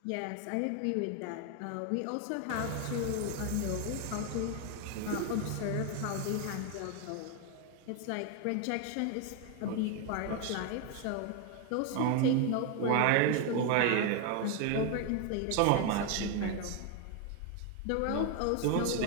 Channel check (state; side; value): different; both; correlation 0.01